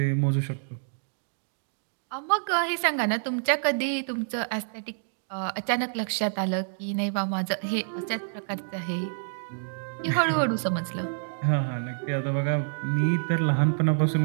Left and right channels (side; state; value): left; silent; digital silence